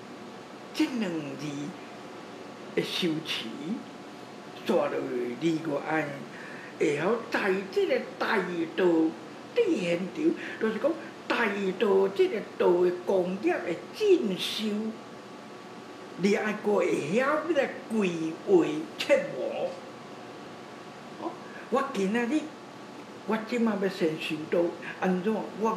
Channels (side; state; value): both; identical; correlation 1.00